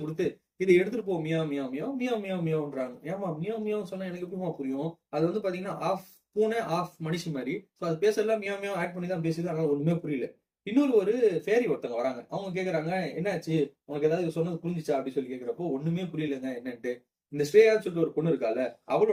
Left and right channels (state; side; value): identical; both; correlation 1.00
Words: கொடுத்து இதை எடுத்துட்டு போ, மியா மியா மியா மியா மியா மியான்றாங்க. ஏமா மியா மியா சொன்னா எனக்கு எப்படிமா புரியும்? அது வந்து பாத்தீங்கன்னா ஆஃப் பூனை ஆஃப் மனுஷி மாதிரி. ஸோ அது பேசலாம் மியா மியா ஆட் பண்ணி தான் பேசுது, அதனால ஒண்ணுமே புரியல. இன்னொரு ஒரு ஃபேரி ஒருத்தவங்க வராங்க. அவங்க கேக்குறாங்க என்னாச்சு உனக்கு ஏதாவது சொன்னது புரிஞ்சிச்சா அப்படி சொல்லி கேக்குறப்போ ஒண்ணுமே புரியலங்க என்னன்ட்டு. இந்த ஸ்ரேயான்னு சொல்லிட்டு ஒரு பொண்ணு இருக்கால,